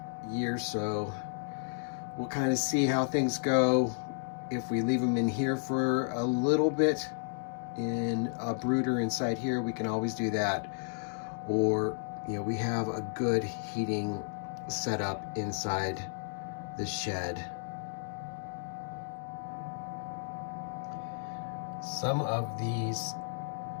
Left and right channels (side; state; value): right; silent; digital silence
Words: year, so we'll kind of see how things go. If we leave them in here for a little bit in a brooder inside here, we can always do that. Or, you know, we have a good heating setup inside the shed. Some of these